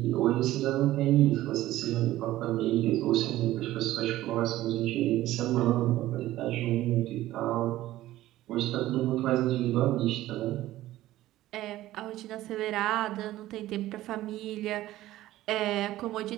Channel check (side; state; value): left; quieter; 15.3 dB